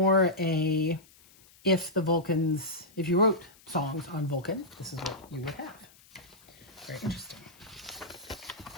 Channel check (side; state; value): left; noise; hiss, 26 dB below the sound